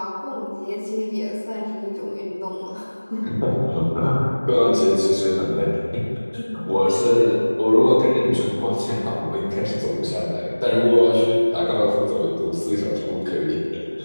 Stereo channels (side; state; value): both; inverted; correlation -1.00